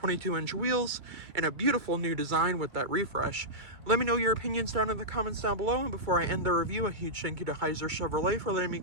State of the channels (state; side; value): late; left; 2.3 ms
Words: wheels, and a beautiful new design with that refresh. Let me know your opinions down in the comments down below. And before I end the review, a huge thank you to Heiser Chevrolet for letting me